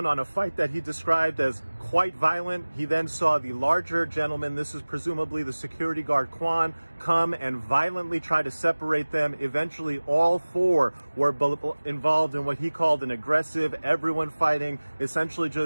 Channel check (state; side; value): inverted; both; correlation -1.00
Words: on a fight that he described as quite violent, he then saw the larger gentleman, this is presumably the security guard Quan, come and violently try to separate them. Eventually, all four were involved in what he called an aggressive, everyone fighting, essentially